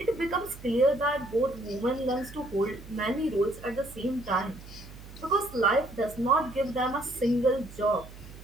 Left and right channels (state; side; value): noise; right; hum, 16 dB below the sound